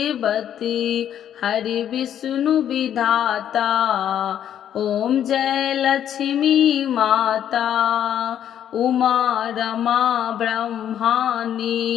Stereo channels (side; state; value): right; quieter; 10.1 dB